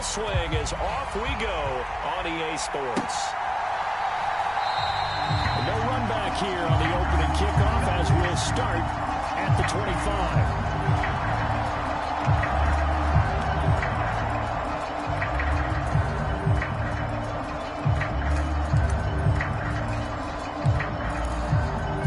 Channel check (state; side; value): identical; both; correlation 1.00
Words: swing as off we go on EA Sports. No run back here on the opening kickoff as we'll start at the 25.